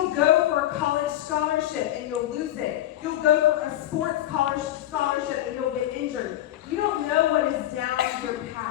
go for a college scholarship and you'll lose it. You'll go for a sports college scholarship and you'll get injured. You don't know what is down your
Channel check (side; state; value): right; quieter; 13.6 dB